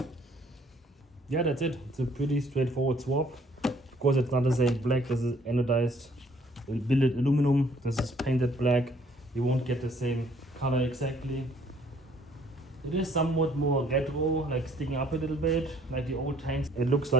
Yeah, that's it. It's a pretty straightforward swap. Of course, it's not the same black. This is anodized billet aluminum. This is painted black. You won't get the same color exactly. It is somewhat more retro, like sticking up a little bit, like the old tanks. It looks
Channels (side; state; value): both; normal; correlation 0.61